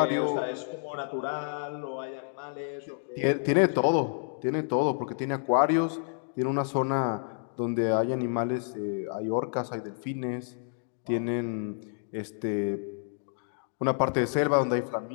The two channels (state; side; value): silent; right; digital silence